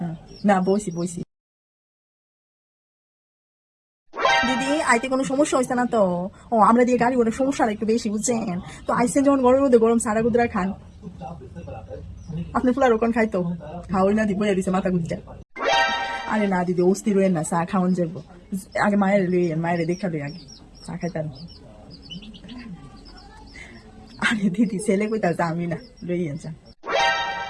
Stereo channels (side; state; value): both; identical; correlation 1.00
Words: না বইছি বইছি। দিদি, আইতে কোনো সমস্যা হয়েছে না তো? আমরা দিয়ে গাড়ি ওটা সমস্যাটা একটু বেশি, বুঝছেন তো? আইসেন যখন গরমের মধ্যে গরম সারা গুদরা খান। আপনি ফুলার ওখান খাইতো খাওয়াই না দিব দিছে মাথা গুজটা। আরে না দিদি, অস্থির হইেন না, চা খাওয়ান যাবো। আগে মায়ের লইয়েন, মায়ের দেখা লই আগে চা খাইতাম। আরে দিদি, ছেলে কইতাছে আমি না, লইয়েন চা।